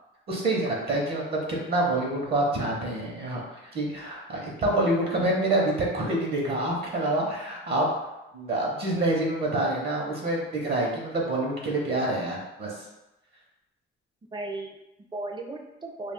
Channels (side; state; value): both; normal; correlation 0.21